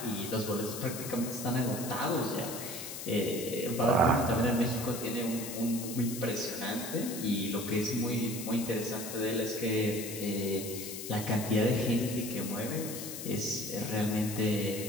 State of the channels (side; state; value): left; noise; hiss, 8 dB below the sound